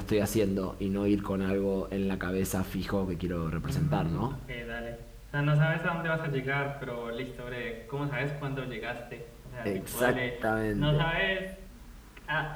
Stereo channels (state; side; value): identical; both; correlation 1.00